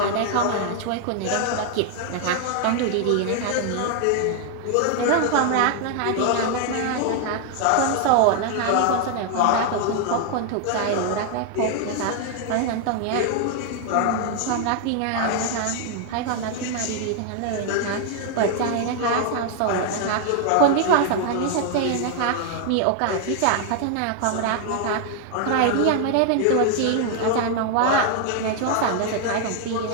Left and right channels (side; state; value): both; different; correlation 0.00